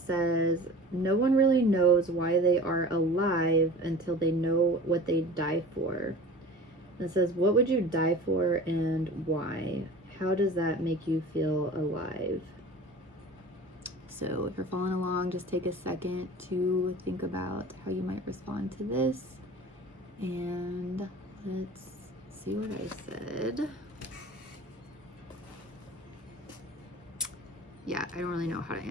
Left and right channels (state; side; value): normal; both; correlation 0.40